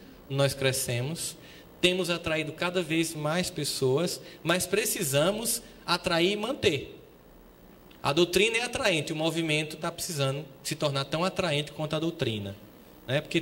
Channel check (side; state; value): both; identical; correlation 1.00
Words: nós crescemos. Temos atraído cada vez mais pessoas, mas precisamos atrair e manter. A doutrina é atraente, o movimento está precisando se tornar tão atraente quanto a doutrina, né?